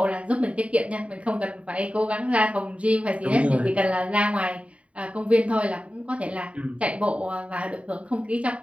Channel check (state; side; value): late; left; 0.064 ms